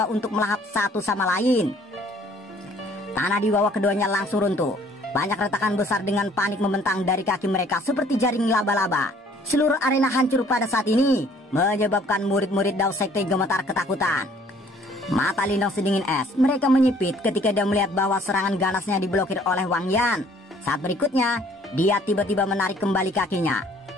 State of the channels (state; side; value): normal; both; correlation 0.58